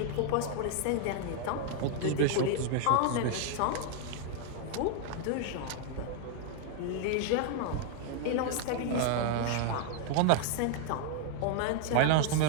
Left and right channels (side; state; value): both; different; correlation 0.00